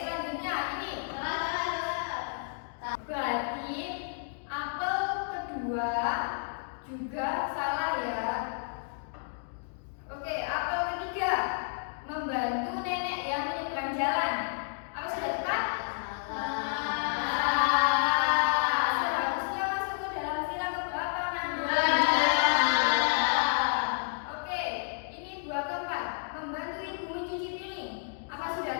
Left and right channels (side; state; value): right; silent; digital silence